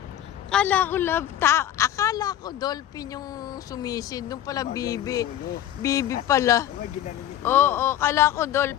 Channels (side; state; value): right; quieter; 11.6 dB